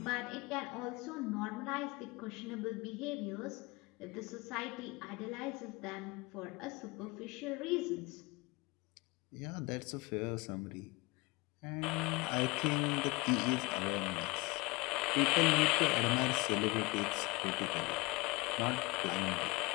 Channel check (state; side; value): quieter; right; 24.3 dB